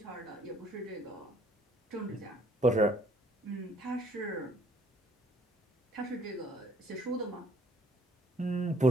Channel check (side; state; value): both; normal; correlation 0.62